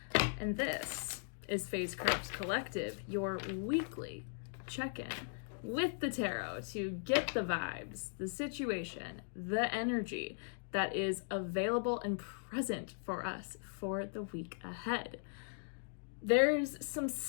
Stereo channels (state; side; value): silent; right; digital silence